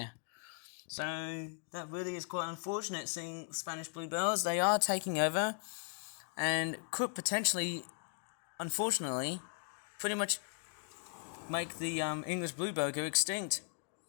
So that really is quite unfortunate, seeing Spanish bluebells. They are taking over and could potentially, unfortunately, pretty much make the English bluebell go extinct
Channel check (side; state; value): right; silent; 53 dB below the other